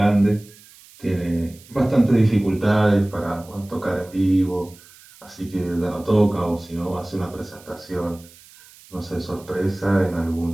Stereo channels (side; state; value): right; noise; hiss, 24 dB below the sound